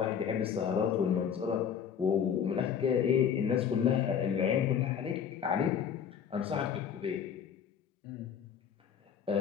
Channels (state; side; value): quieter; right; 7.9 dB